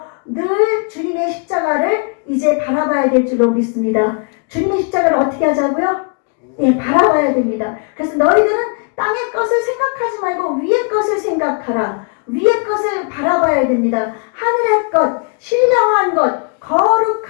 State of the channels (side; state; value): right; quieter; 39.6 dB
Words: 늘 주님의 십자가를 이제 바라봐야 될 줄로 믿습니다. 주님의 십자가를 어떻게 하자고요? 예, 바라봐야 됩니다. 그래서 너희들은 땅의 것을 생각하지 말고 위의 것을 생각하라. 위의 것을 바라봐야 됩니다. 하늘의 것, 신령한 것,